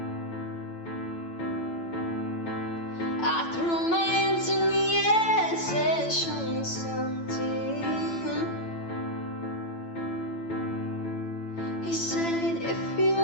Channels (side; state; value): right; late; 8.9 ms